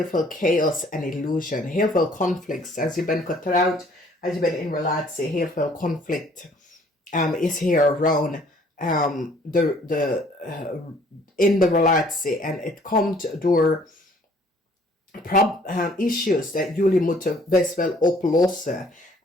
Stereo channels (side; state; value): both; normal; correlation 0.59